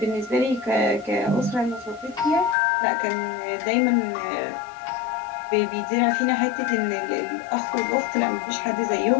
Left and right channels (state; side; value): drops out; right; at 2.6 s